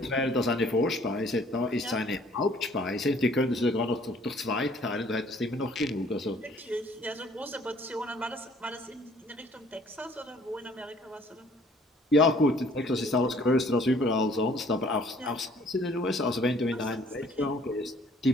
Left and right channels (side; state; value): both; normal; correlation 0.58